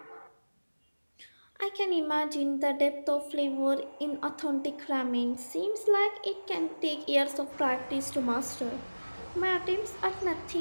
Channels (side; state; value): both; inverted; correlation -1.00